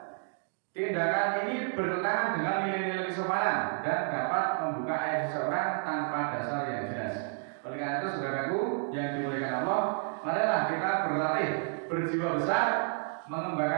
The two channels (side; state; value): left; silent; 57 dB below the other